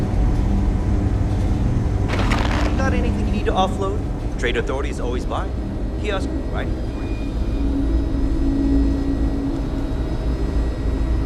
Got anything you need to offload? Trade Authority is always by. Kiosk, right?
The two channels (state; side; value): identical; both; correlation 1.00